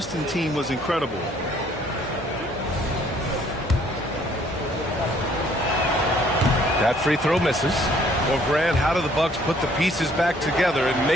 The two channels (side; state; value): both; normal; correlation 0.62